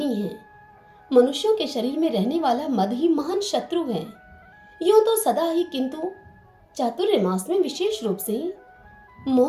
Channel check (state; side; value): identical; both; correlation 1.00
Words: है। मनुष्यों के शरीर में रहने वाला मद ही महान शत्रु है। यूं तो सदा ही, किंतु चातुर्य मास में विशेष रूप से